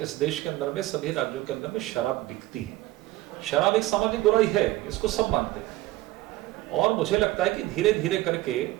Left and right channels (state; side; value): quieter; left; 17.3 dB